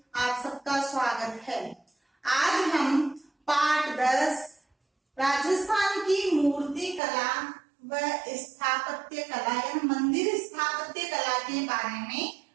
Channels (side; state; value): left; drops out; at 7.0 s